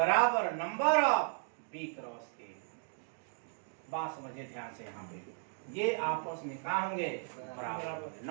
number of B cross A. बात समझिए ध्यान से, यहाँ पे ये आपस में कहा होंगे? बराबर।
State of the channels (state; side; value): silent; left; digital silence